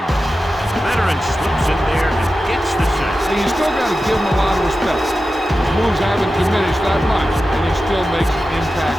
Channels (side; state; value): both; normal; correlation 0.93